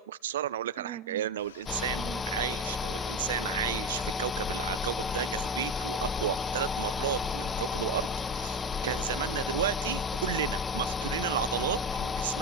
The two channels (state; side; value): normal; both; correlation 0.20